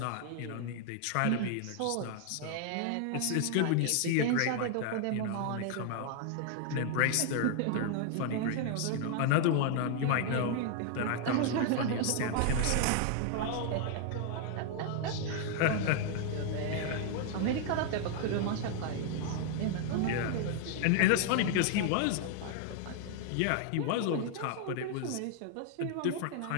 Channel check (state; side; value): different; both; correlation 0.00